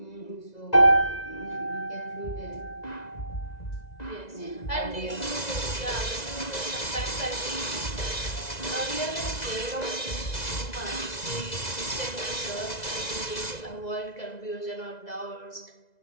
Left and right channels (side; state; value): right; late; 2.0 ms